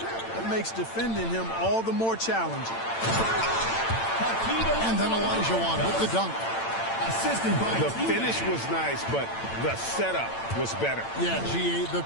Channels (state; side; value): late; right; 8.9 ms